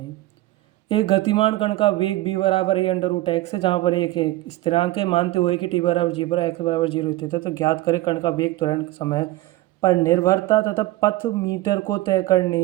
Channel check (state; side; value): quieter; left; 17.3 dB